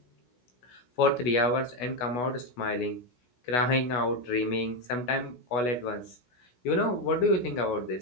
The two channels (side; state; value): right; late; 16 ms